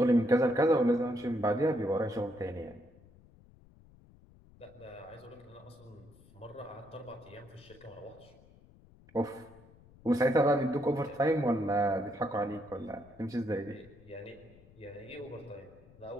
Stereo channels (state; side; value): noise; left; rumble, 25 dB below the sound